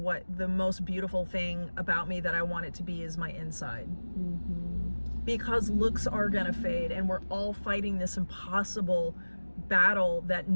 the most beautiful thing about me that I want it to be is my inside. Because looks are gonna fade, and we're all fighting this impossible battle that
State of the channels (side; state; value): both; inverted; correlation -1.00